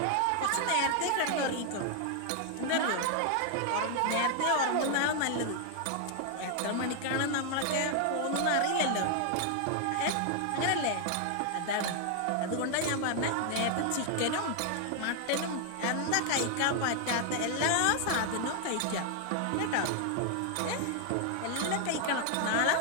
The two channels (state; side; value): different; both; correlation 0.00